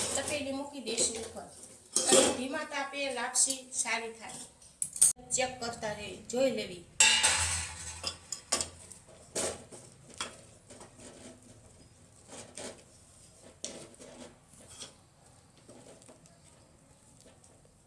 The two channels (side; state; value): both; identical; correlation 1.00